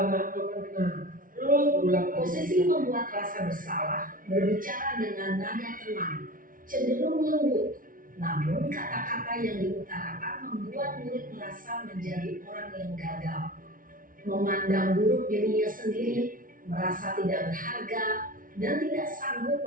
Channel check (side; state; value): left; late; 0.40 ms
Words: waktu kan benar. Terus berulang kali. Posisi membuat rasa bersalah berbicara dengan nada tenang, cenderung lembut. Namun kata-kata yang diutarakan membuat murid merasa menjadi orang yang gagal, memandang buruk dirinya sendiri, merasa tidak berharga, dan tidak sanggup